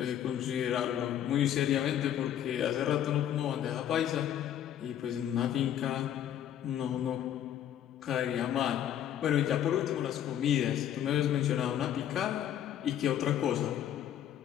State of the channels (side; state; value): right; quieter; 10.6 dB